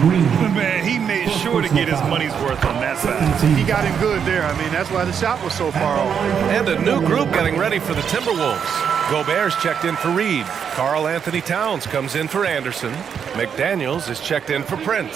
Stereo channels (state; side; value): quieter; left; 7.5 dB